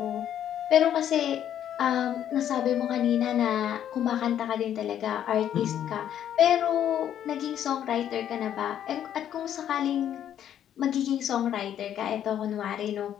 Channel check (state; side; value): quieter; right; 10.3 dB